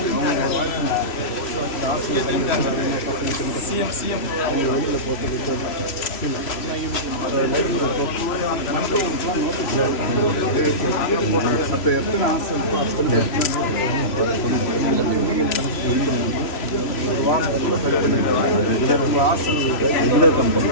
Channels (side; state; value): right; late; 3.1 ms